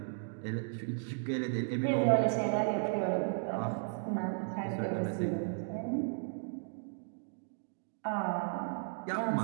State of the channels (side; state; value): left; silent; digital silence